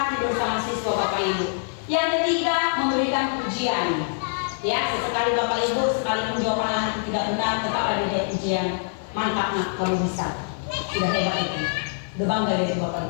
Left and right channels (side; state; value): right; silent; 58 dB below the other